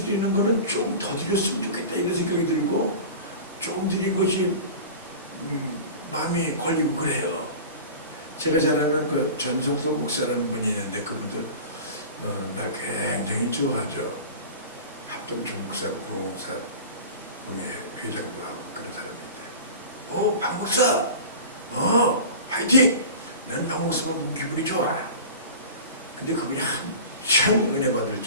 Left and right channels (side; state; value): both; inverted; correlation -0.35